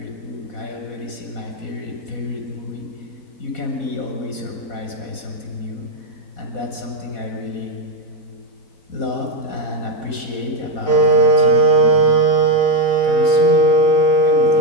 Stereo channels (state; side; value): late; right; 4.1 ms